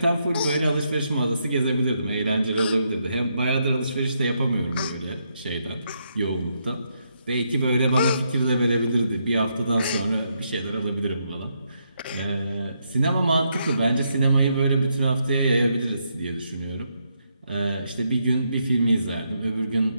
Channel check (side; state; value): both; inverted; correlation -0.78